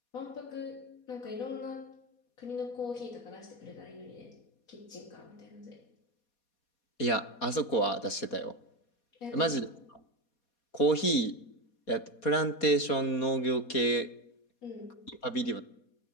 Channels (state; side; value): late; right; 4.2 ms